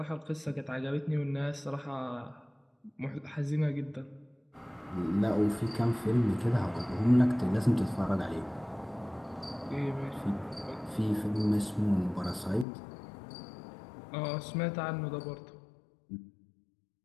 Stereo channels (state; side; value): drops out; right; at 12.7 s